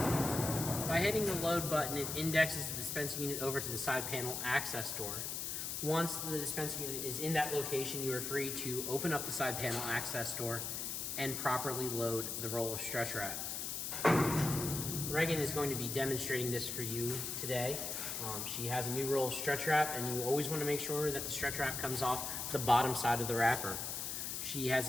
By hitting the load button, it indexes the dispensing unit over to the side panel access door. Once the dispensing unit is in that location, you are free to open up the side panel access door and properly load the roll of stretch wrap. Reagan is going to be demonstrating this for you today. She has a new roll of stretch wrap, and you always want to make sure that the stretch wrap comes off the bottom side of the wrapper. She has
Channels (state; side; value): noise; left; hiss, 3 dB below the sound